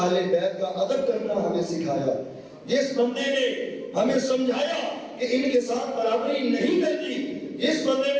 بیت کا ادب کرنا ہمیں سکھایا, جس بندے نے ہمیں سمجھایا کہ ان کے ساتھ برابری نہیں کرنی, جس بندے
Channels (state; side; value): identical; both; correlation 1.00